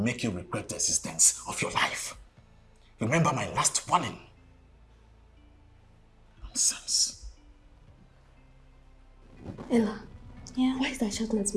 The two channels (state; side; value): identical; both; correlation 1.00